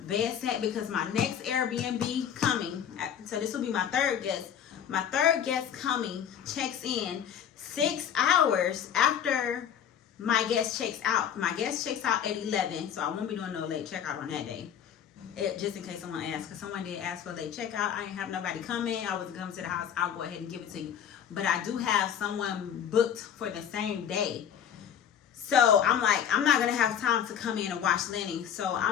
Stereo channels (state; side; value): quieter; right; 8.9 dB